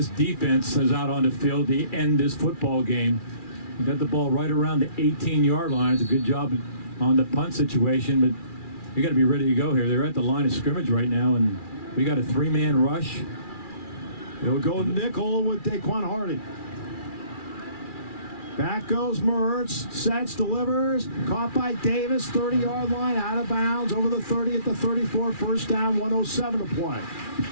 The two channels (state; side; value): late; right; 2.4 ms